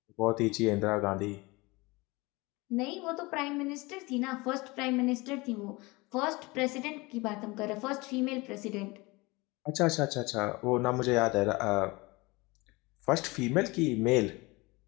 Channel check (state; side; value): quieter; right; 23.9 dB